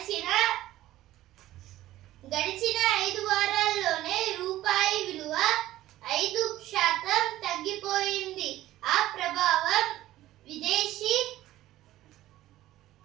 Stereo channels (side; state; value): left; quieter; 15.0 dB